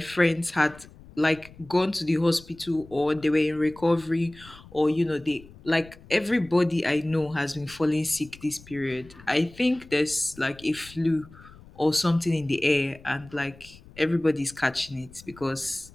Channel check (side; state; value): left; noise; rumble, 22 dB below the sound